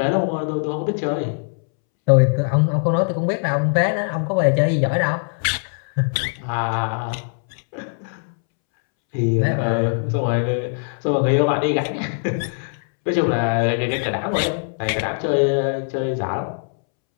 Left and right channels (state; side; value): silent; right; 65 dB below the other